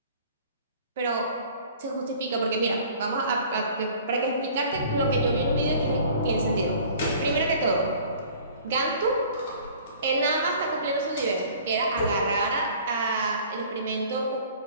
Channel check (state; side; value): inverted; both; correlation -0.49